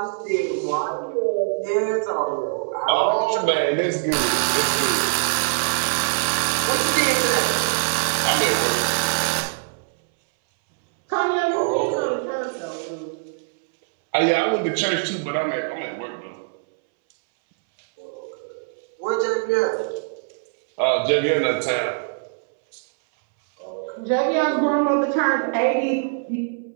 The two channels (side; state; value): left; silent; 62 dB below the other